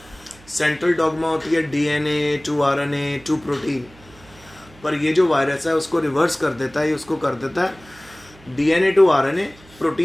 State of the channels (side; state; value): right; noise; hum, 25 dB below the sound